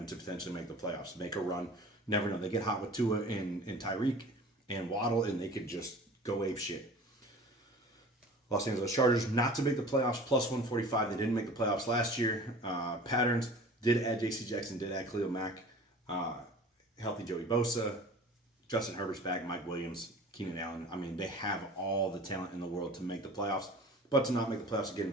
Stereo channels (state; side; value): normal; both; correlation 0.42